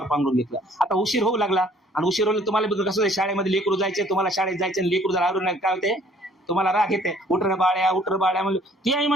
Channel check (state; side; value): normal; both; correlation 0.58